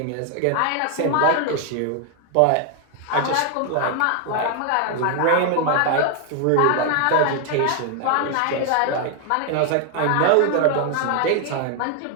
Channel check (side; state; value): both; different; correlation 0.00